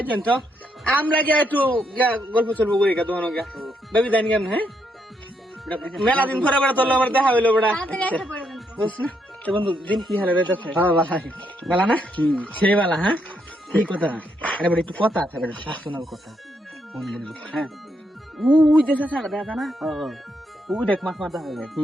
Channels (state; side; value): normal; both; correlation 0.77